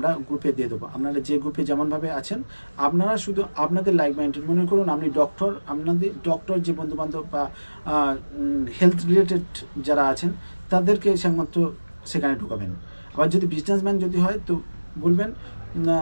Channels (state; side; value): inverted; both; correlation -1.00